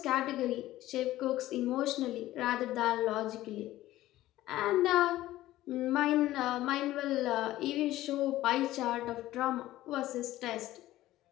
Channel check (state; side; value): quieter; right; 15.4 dB